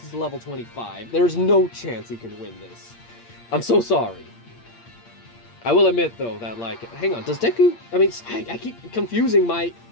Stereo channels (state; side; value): late; right; 8.6 ms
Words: is a level 25. There's no chance he can win this. I'm so sorry. I will admit though that like, hang on, does Deku, I mean, I keep confusing my